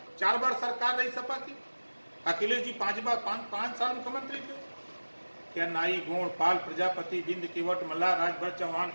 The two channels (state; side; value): inverted; both; correlation -1.00